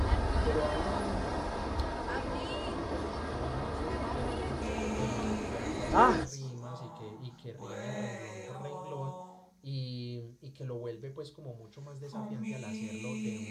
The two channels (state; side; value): identical; both; correlation 1.00